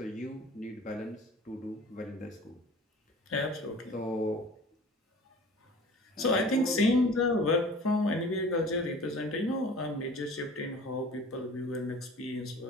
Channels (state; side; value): normal; both; correlation 0.44